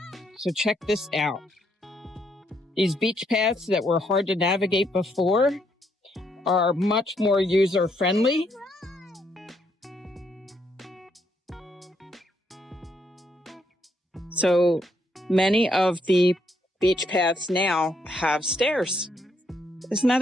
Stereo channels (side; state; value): both; normal; correlation 0.74